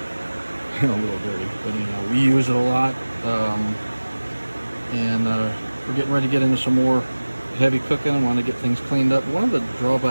A little dirty, but anyhow, we use it a lot, and we're getting ready to get into some more heavy cooking. I want to get things cleaned up. One of the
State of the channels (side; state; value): both; inverted; correlation -1.00